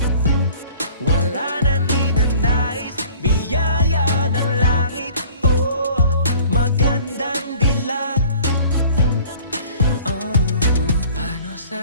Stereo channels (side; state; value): both; inverted; correlation -0.49